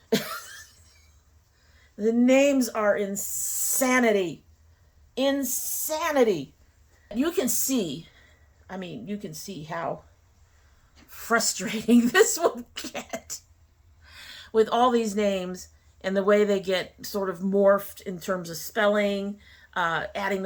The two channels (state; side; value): identical; both; correlation 1.00